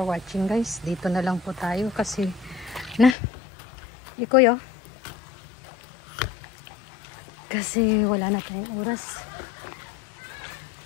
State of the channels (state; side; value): drops out; right; at 3.2 s